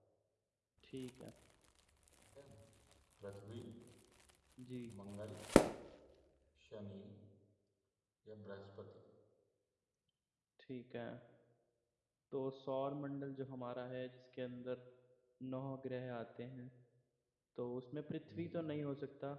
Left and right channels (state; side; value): identical; both; correlation 1.00